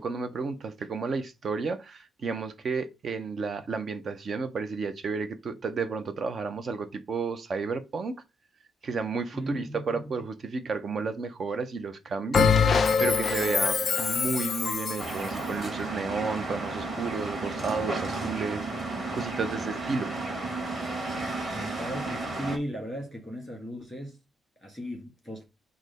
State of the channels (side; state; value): both; normal; correlation 0.74